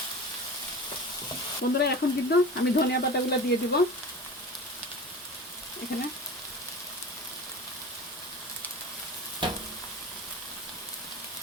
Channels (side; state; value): both; normal; correlation 0.34